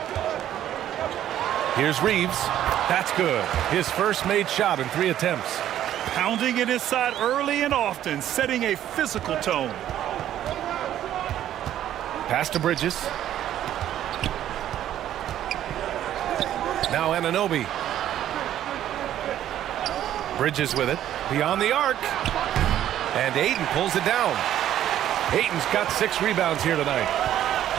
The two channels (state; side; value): quieter; left; 11.7 dB